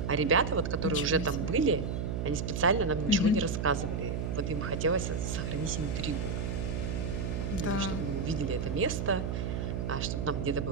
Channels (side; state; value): right; noise; hum, 2 dB below the sound